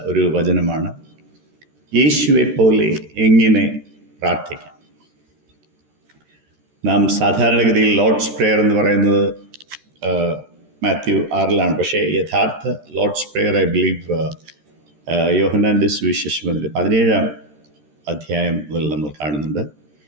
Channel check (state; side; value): late; left; 13 ms